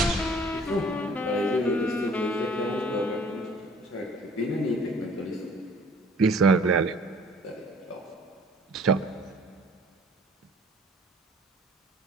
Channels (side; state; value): both; normal; correlation 0.53